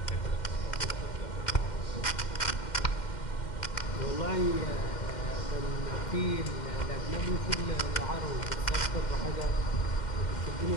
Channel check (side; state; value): right; late; 2.1 ms